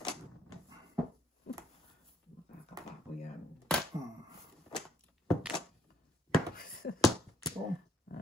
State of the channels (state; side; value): normal; both; correlation 0.69